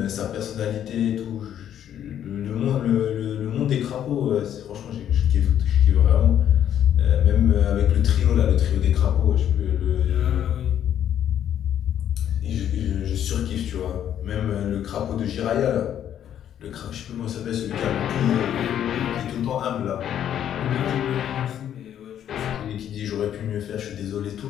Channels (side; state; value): right; quieter; 10.2 dB